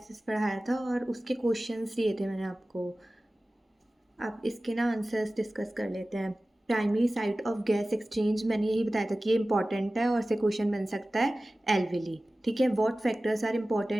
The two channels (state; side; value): normal; both; correlation 0.97